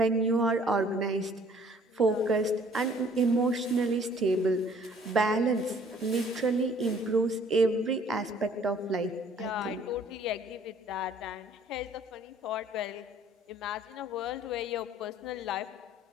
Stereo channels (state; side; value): normal; both; correlation 0.57